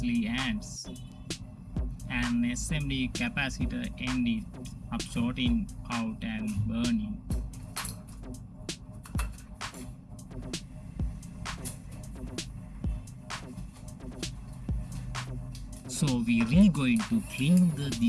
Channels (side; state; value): both; identical; correlation 1.00